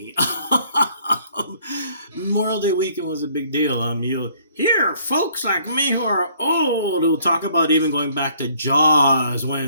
Memorial Day weekend was a big deal. You hear folks like me who are old who talk about even going back to Jaws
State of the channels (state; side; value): inverted; both; correlation -0.61